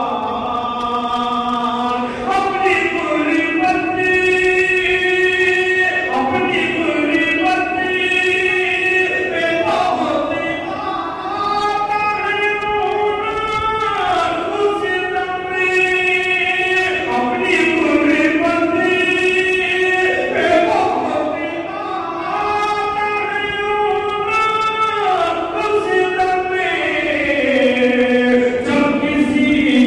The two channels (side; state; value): both; identical; correlation 1.00